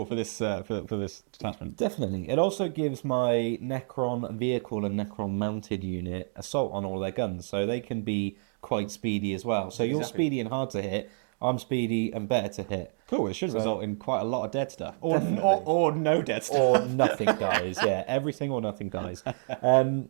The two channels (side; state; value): left; silent; digital silence